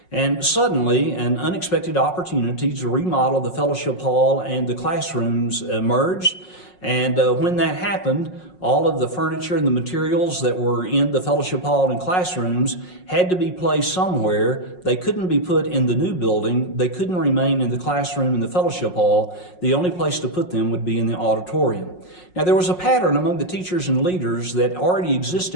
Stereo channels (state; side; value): late; right; 5.5 ms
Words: And suddenly, an unexpected opportunity to remodel the fellowship hall and the classrooms emerged. And when that happened, all of the furniture and the materials that were in the fellowship hall and classrooms had to be placed somewhere. They couldn't be put in the new building. They couldn't remain in the classroom and the fellowship hall. The only place to put them would be in the auditorium. Now, there was a pattern among the teachers and leaders that already